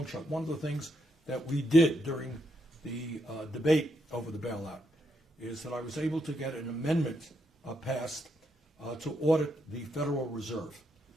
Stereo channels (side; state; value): both; normal; correlation 0.79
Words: shot. One of the things that we did during the debate over the bailout is that I was able to get an amendment passed to audit the Federal Reserve.